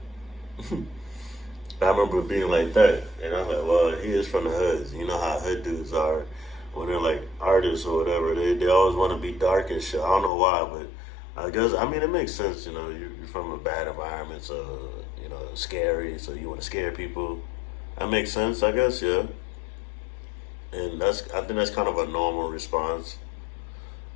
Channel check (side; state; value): right; drops out; at 10.3 s